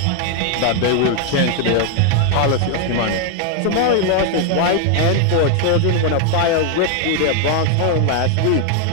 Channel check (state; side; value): different; both; correlation 0.00